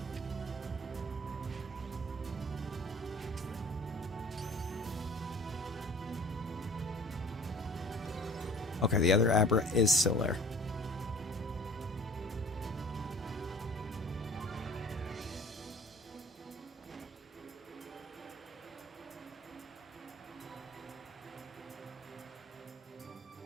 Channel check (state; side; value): normal; both; correlation 0.48